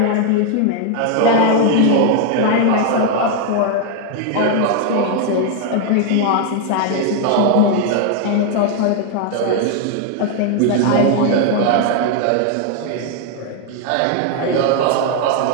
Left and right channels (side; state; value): both; different; correlation 0.00